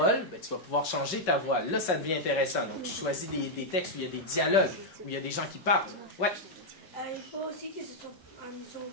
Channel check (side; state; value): right; late; 5.3 ms